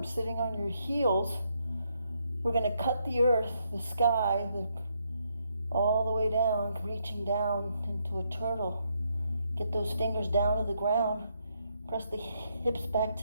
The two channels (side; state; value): both; inverted; correlation -0.77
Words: Sitting on your heels, we're going to cut the earth, the sky, all the way down, reaching down into a turtle. Get those fingers down to the ground. Press the hips back